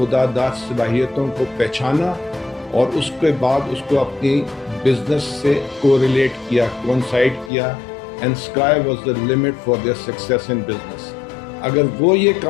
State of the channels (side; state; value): right; drops out; at 7.5 s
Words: داد صلاحیتوں کو پہچانا اور اس کے بعد اس کو اپنی بزنس سے کوریلیٹ کیا، کوئنسائڈ کیا، and sky was the limit for their success in business. اگر وہ یہ